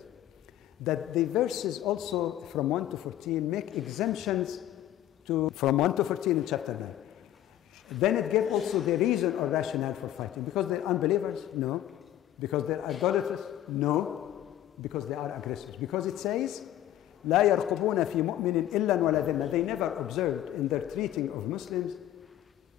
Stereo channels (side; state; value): right; quieter; 12.6 dB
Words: that the verses also from 1 to 14 make exemptions from 1 to 14 in chapter 9. Then it gave also the reason or rationale for fighting. Because they're unbelievers? No. Because they're idolaters? No. Because they are aggressors. Because it says, لا يرقبون في مؤمن إلا ولا ذمة. They never observed in their treating of Muslims